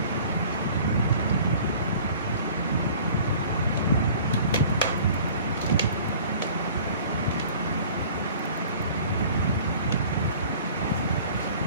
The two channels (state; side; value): inverted; both; correlation -0.47